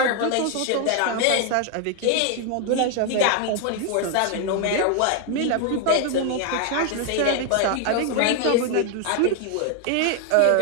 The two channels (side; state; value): both; different; correlation 0.00